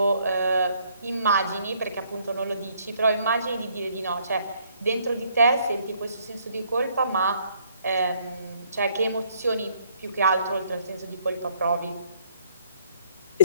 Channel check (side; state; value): both; inverted; correlation -0.66